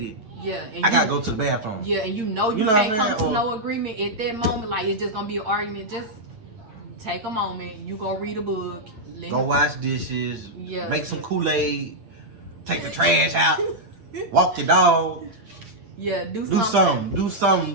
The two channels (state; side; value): late; left; 9.0 ms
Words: and I gotta go to the bathroom. Yeah, and you can't come to no agreement at that moment. It's just gonna be an argument. Just take a moment. You go read a book. Go wash dishes. Make some Kool-Aid. Take the trash out. Walk your dog. Yeah, do something. Do